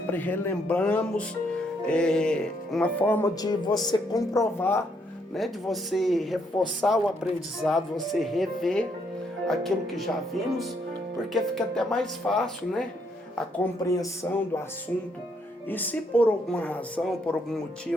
relembramos, uma forma de você comprovar, né, de você reforçar o aprendizado, você rever aquilo que já vimos, porque fica até mais fácil, né, a compreensão do assunto. E se por alguma razão, por algum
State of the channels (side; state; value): both; normal; correlation 0.73